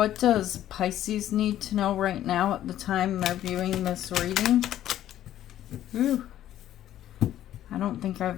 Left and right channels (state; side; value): quieter; right; 12.2 dB